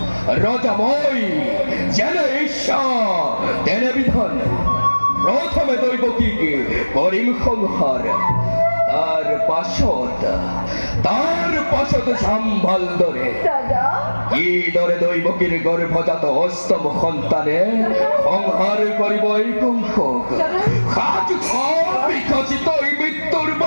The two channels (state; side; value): inverted; both; correlation -1.00